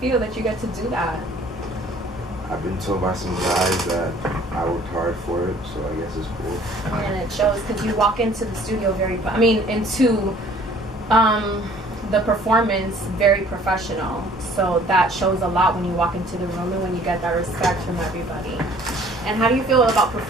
feel that you get to do that? I've been told by some guys that I worked hard for it, so I guess it's cool. And it shows because you walk into the studio into the performance very professional. So that shows a lot when you walk into the room and when you get that respect from everybody. And how do you feel about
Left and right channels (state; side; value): normal; both; correlation 0.54